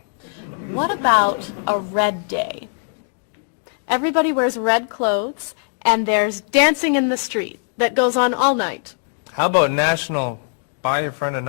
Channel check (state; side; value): silent; right; digital silence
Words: What about a red day? Everybody wears red clothes, and there's dancing in the street that goes on all night. How about National Buy Your Friend